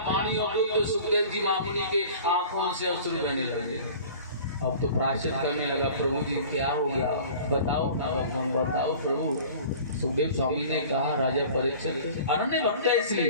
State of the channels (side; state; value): both; inverted; correlation -0.43